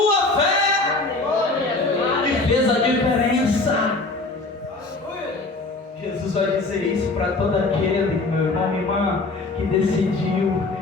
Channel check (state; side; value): quieter; right; 3.3 dB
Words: dizer isso para todo aquele, meu irmão, minha irmã, que decidiu